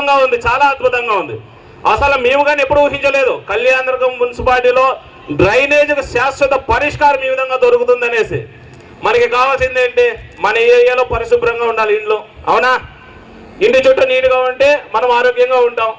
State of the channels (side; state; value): both; identical; correlation 1.00